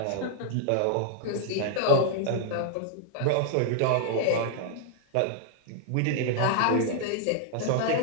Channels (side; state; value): both; different; correlation -0.01